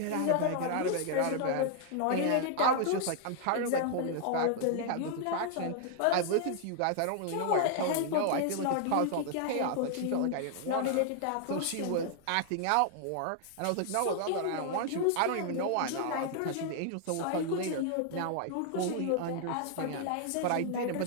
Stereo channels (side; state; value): both; different; correlation 0.00